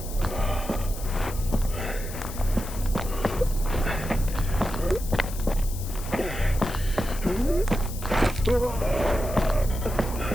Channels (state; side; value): noise; left; hiss, 13 dB below the sound